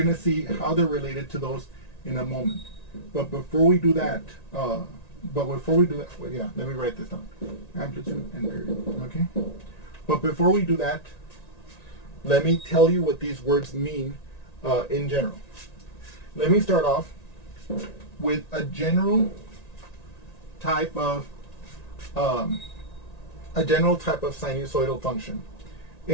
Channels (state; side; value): late; right; 1.9 ms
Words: to see how they're related to those in a moment. But before we do that, well, yeah, let me write this down. Amplitude and period, okay? But before we do that, let me tell you what these words mean in general. Let me start off with a general type of sinusoidal function.